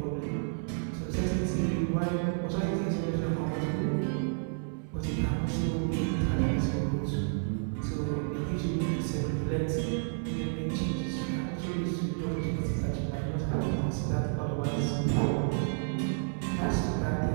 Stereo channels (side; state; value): left; silent; digital silence